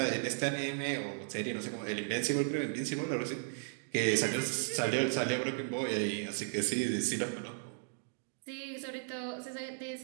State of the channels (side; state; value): left; silent; digital silence